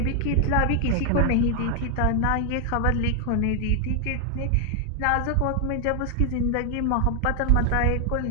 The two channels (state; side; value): different; both; correlation 0.00